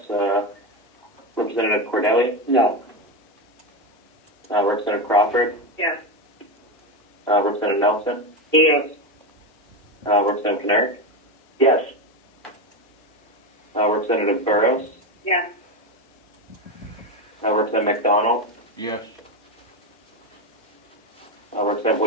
Representative Cordelli? No. Representative Crawford? Yes. Representative Nelson? Yes. Representative Knerr? Yes. Representative Burrows? Yes. Representative McDonald? Yes. Representative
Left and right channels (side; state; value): both; normal; correlation 0.14